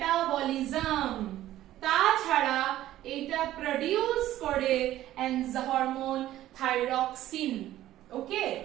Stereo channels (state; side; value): quieter; left; 13.9 dB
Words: তাছাড়া এটা প্রডিউস করে হরমোন থাইরক্সিন। ওকে,